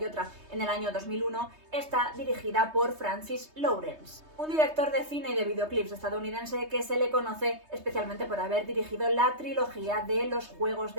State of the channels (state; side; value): late; left; 3.2 ms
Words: otra en el año 2001, está dirigida por Francis Lawrence, un director de cine y de videoclips estadounidense que se le conoce especialmente por haber dirigido la trilogía de Los Juegos